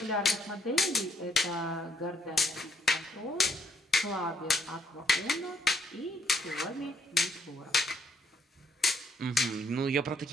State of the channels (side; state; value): both; normal; correlation 0.70